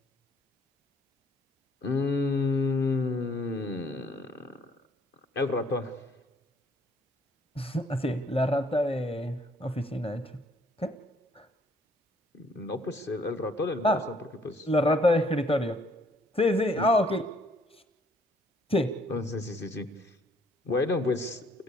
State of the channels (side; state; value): both; normal; correlation 0.65